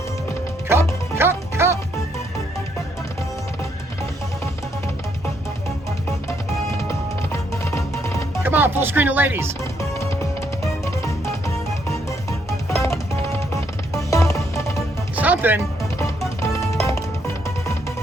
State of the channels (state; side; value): normal; both; correlation 0.73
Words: Cup. Come on, full screen of ladies. Something.